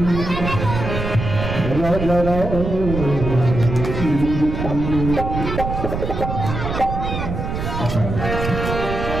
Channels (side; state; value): right; noise; rumble, 4 dB below the sound